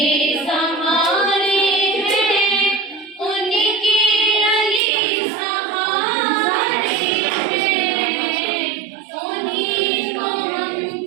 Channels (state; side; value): drops out; left; at 4.8 s